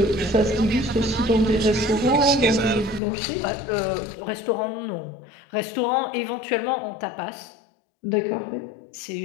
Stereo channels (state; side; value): drops out; right; at 3.0 s